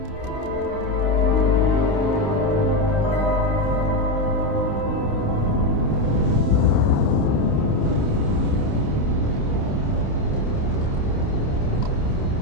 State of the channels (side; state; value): right; late; 28 ms